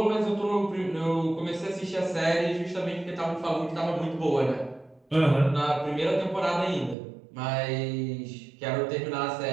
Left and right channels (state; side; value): drops out; left; at 7.0 s